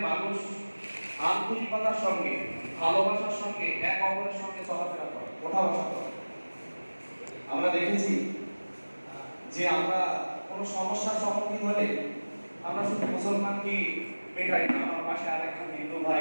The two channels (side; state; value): both; inverted; correlation -1.00